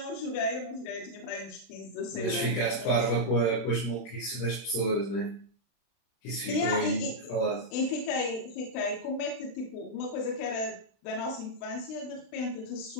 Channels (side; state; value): right; late; 32 ms